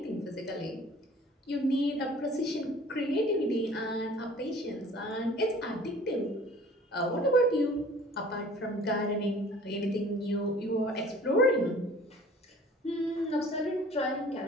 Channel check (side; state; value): both; normal; correlation 0.49